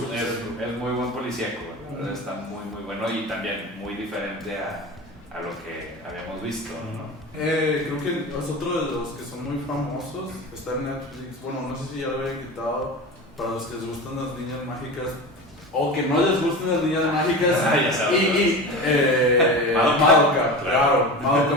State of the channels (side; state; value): both; normal; correlation 0.29